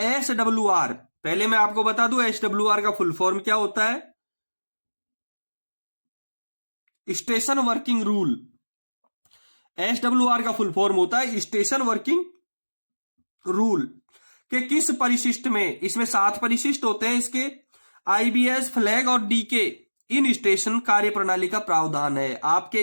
SWR, पहले मैं आपको बता दूं SWR का फुल फॉर्म क्या होता है, स्टेशन वर्किंग रूल। SWR का फुल फॉर्म होता है स्टेशन वर्किंग रूल के किस परिशिष्ट में, इसमें 7 परिशिष्ट होते हैं इसके, IBS, फ्लैग और DK इन स्टेशन कार्य प्रणाली का प्रावधान है। आपके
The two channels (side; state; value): both; inverted; correlation -1.00